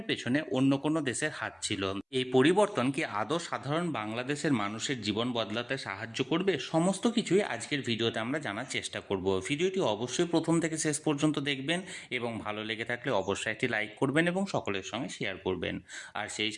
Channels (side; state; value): both; identical; correlation 1.00